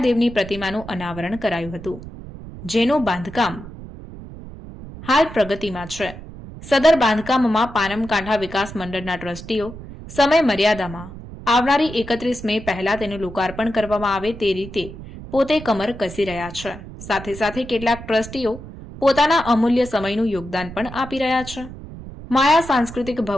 પ્રતિમાનું અનાવરણ કરાયું હતું, જેનું બાંધકામ હાલ પ્રગતિમાં છે। સદર બાંધકામમાં પાનમકાંઠા વિકાસ મંડળના ટ્રસ્ટીઓ સમય મર્યાદામાં આવનારી 31 મે પહેલા તેનું લોકાર્પણ કરવામાં આવે તે રીતે પોતે કમર કસી રહ્યા છે। સાથે સાથે કેટલાક ટ્રસ્ટીઓ પોતાના અમૂલ્ય સમયનું યોગદાન પણ આપી રહ્યા છે। માયા સાંસ્કૃતિક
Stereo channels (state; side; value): noise; right; rumble, 13 dB below the sound